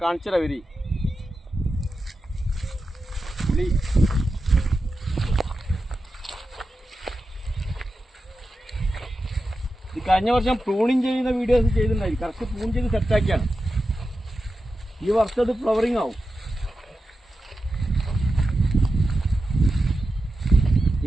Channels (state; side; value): normal; both; correlation 0.91